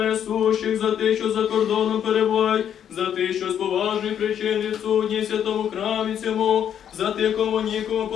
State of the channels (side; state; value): right; quieter; 9.3 dB